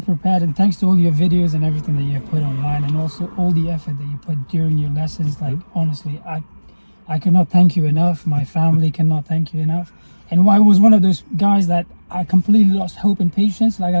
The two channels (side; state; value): both; inverted; correlation -1.00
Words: prepared, and thanks to all your videos and everything that you put online, and also all the effort that you put during your lessons. Like honestly, I cannot thank you enough. My family cannot thank you enough. And I was one of those guys that I completely lost hope and patience. Like